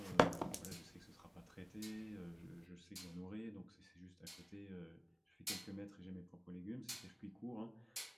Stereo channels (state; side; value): identical; both; correlation 1.00